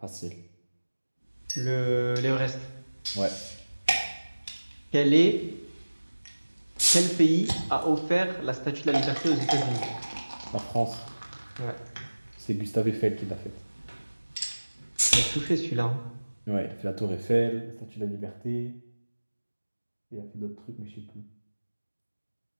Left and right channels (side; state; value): both; inverted; correlation -1.00